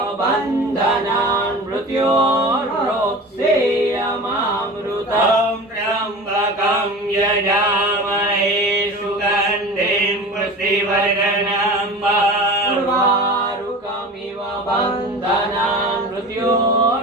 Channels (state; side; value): normal; both; correlation 0.35